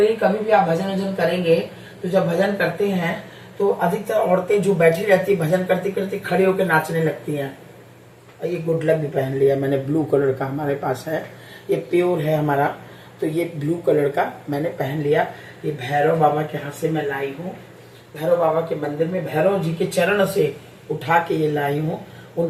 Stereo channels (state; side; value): identical; both; correlation 1.00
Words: कभी भी आप भजन वजन करेंगे तो जब भजन करते हैं तो अधिकतर औरतें जो बैठी रहती है भजन करते करते खड़े होकर नाचने लगती हैं। ये गुड लक भी पहन लिया मैंने, ब्लू कलर का हमारे पास है, ये प्योर है हमारा, तो ये ब्लू कलर का मैंने पहन लिया। ये भैरव बाबा के हाथ से मैं लाई हूँ, भैरव बाबा के मंदिर में भैरव जी के चरण से उठा के ये लाई हूँ।